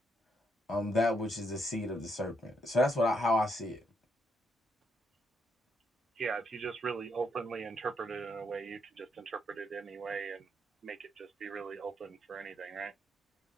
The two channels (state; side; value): normal; both; correlation 0.76